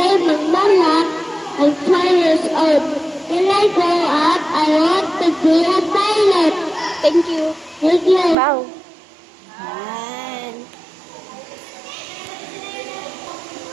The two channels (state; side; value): drops out; left; at 8.3 s